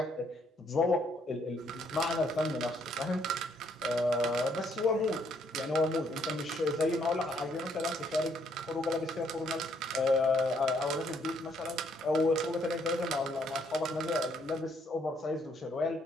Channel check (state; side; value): normal; both; correlation 0.69